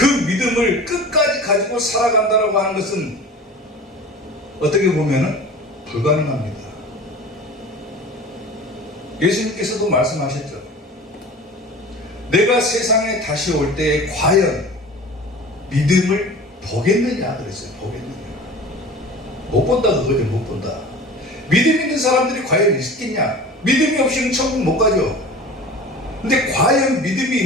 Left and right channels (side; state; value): both; normal; correlation 0.38